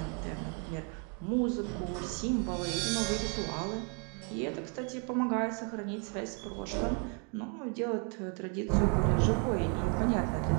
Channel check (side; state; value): left; quieter; 38.4 dB